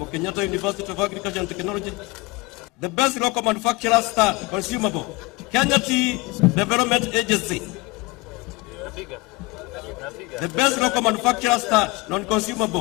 Kenyatta University of Agriculture and Technology. The best local manufacturer stud, consumable, Kenya Tea Development Agency. The best local manufacturer stud,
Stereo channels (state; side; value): quieter; right; 23.9 dB